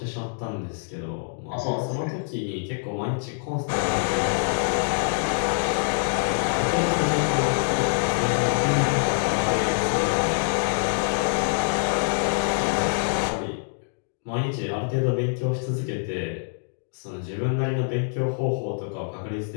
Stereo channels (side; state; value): right; silent; digital silence